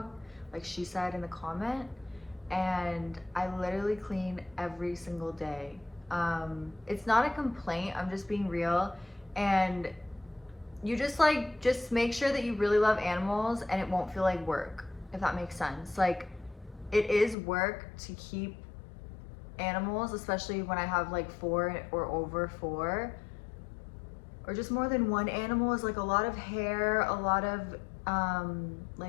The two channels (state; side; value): drops out; right; at 17.4 s